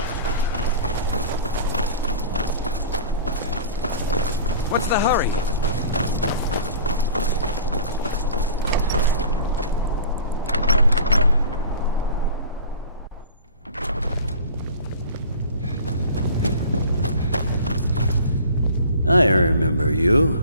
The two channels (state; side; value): inverted; both; correlation -0.41